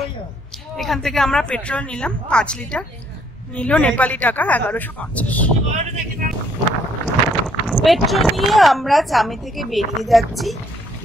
এখান থেকে আমরা পেট্রোল নিলাম 5 লিটার, নিল নেপালি টাকা 1150। পেট্রোল নিয়ে আমরা চামে থেকে বেরিয়ে যাচ্ছি।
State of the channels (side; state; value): both; normal; correlation 0.67